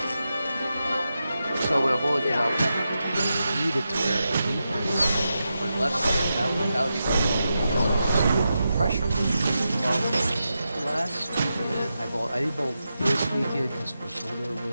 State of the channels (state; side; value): inverted; both; correlation -0.88